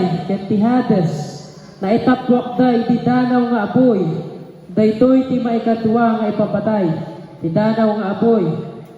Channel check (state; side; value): identical; both; correlation 1.00